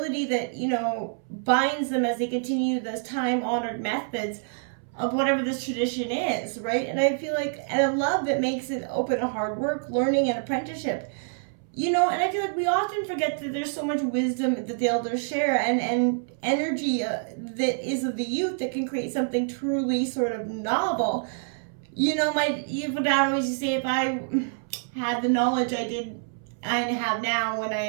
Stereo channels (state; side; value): silent; left; 60 dB below the other